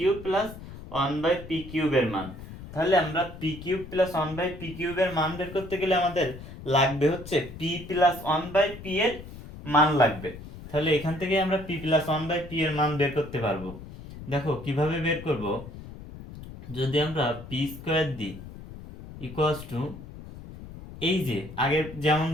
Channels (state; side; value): noise; left; rumble, 14 dB below the sound